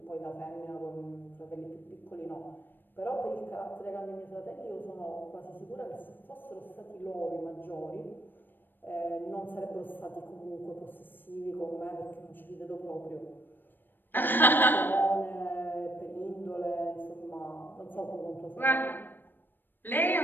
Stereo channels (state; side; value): late; right; 0.094 ms